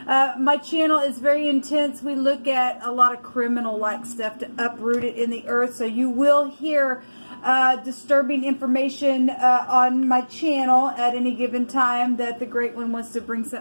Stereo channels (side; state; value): both; inverted; correlation -1.00